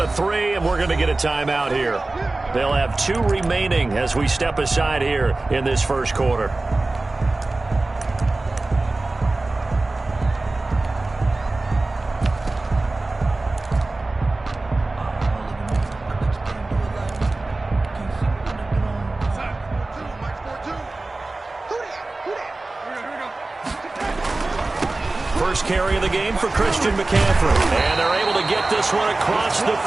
to 3, and we're going to get a timeout here. They'll have 2 remaining as we step aside here in this first quarter. First carry of the game for Christian McCaffrey. And they're able to get this one across the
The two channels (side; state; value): left; quieter; 3.1 dB